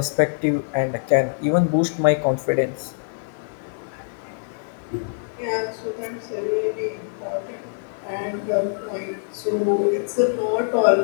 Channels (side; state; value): right; silent; digital silence